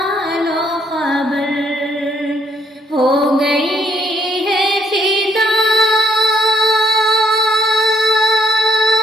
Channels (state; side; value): normal; both; correlation 0.68